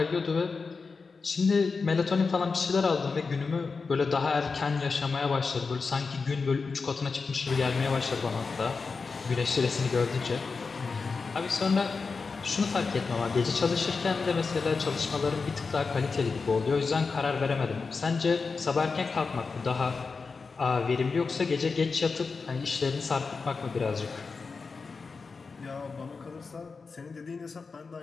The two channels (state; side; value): quieter; right; 4.6 dB